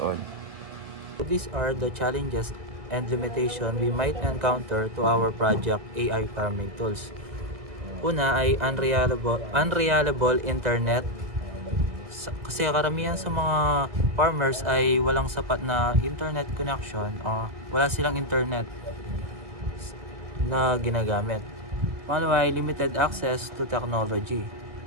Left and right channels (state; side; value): late; left; 1.8 ms